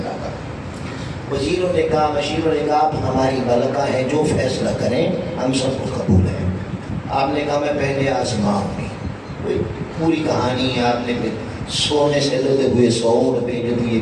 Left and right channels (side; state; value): both; identical; correlation 1.00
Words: کا۔ وزیروں نے کہا، مشیروں نے کہا آپ ہماری ملکہ ہیں، جو فیصلہ کریں ہم سب کو قبول ہے۔ آپ نے کہا میں پہلے آزماؤں گی، پوری کہانی ہے، آپ نے سونے سے لگے ہوئے سوڑ بھیج دیے،